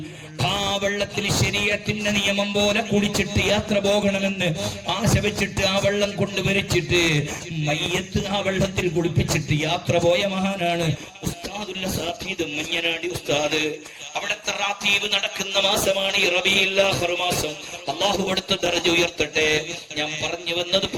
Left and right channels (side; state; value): both; identical; correlation 1.00